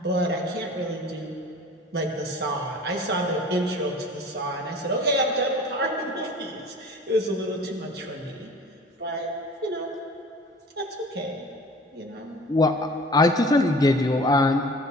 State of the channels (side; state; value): both; normal; correlation 0.44